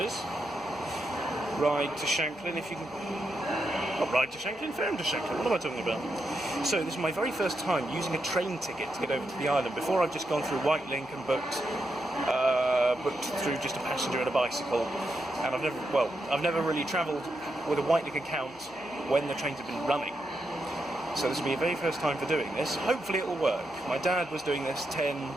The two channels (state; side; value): noise; left; hum, 28 dB below the sound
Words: Ryde to Shanklin, if you can... Not Ryde to Shanklin, Ferrum to Shanklin, what am I talking about? So this is my very first time using a train ticket to get over to the island. Before I've just gone through Wightlink and booked through just a passenger and a bicycle. And I've never really travelled with a Wightlink account when the trains have been running. So this will be a very first time for doing this. Hopefully it will work. My dad was doing this